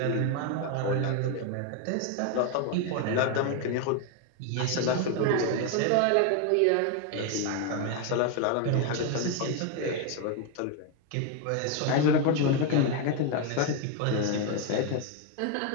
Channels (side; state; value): both; different; correlation 0.01